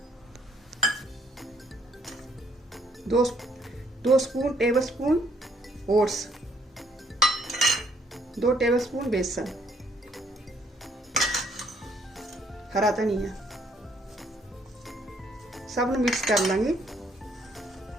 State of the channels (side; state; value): both; normal; correlation 0.66